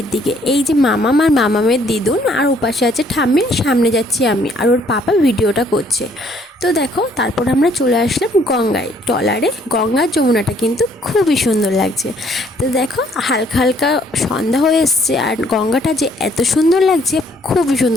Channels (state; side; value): normal; both; correlation 0.64